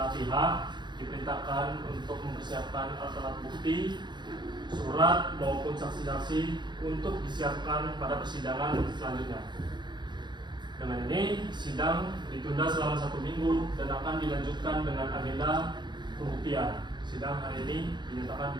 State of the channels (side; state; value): left; late; 0.21 ms